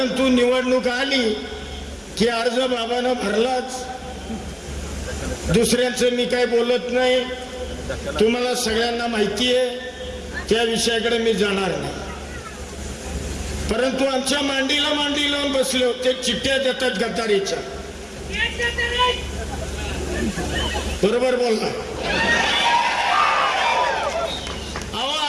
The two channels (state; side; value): identical; both; correlation 1.00